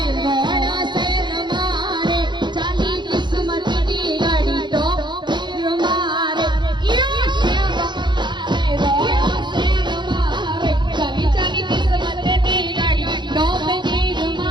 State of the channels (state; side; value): late; left; 0.22 ms